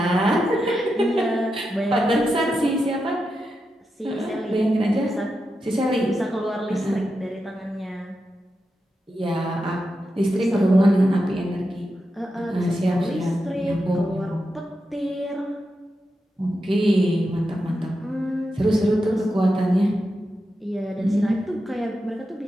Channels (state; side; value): normal; both; correlation 0.88